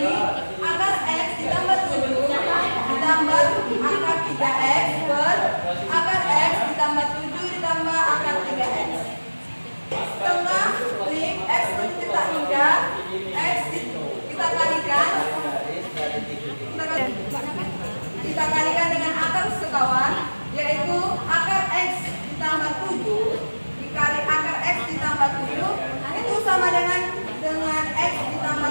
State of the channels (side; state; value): both; inverted; correlation -1.00